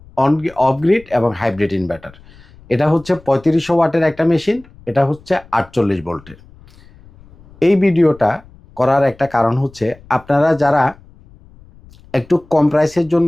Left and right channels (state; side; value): noise; left; rumble, 25 dB below the sound